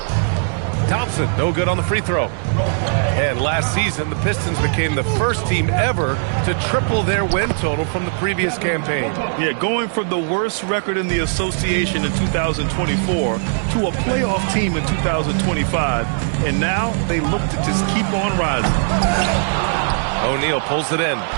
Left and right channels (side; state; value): left; silent; digital silence